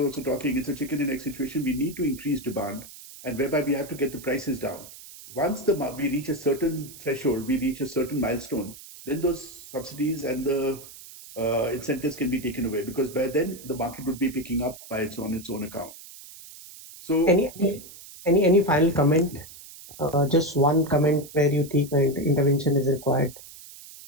also talking, it's a chicken and egg situation. We need to increase demand, and whereby we have to get the prices down. Once we reach a certain threshold, we reach a certain milestone, then those subsidies and the incentives can be taken away, because by then the market would be picking up by its own account. So Any final comment? Just one comment where you think intervention is required.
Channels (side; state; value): right; noise; hiss, 17 dB below the sound